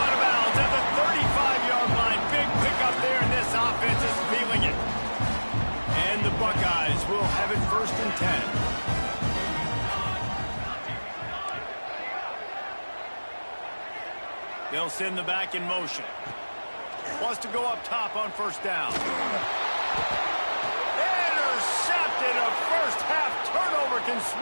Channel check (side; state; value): both; inverted; correlation -1.00